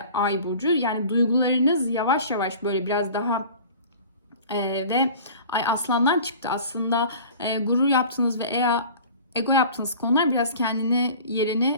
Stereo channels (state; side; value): inverted; both; correlation -0.43